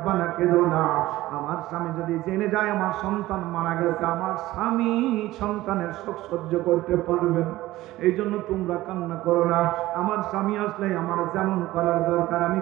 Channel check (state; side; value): quieter; left; 16.8 dB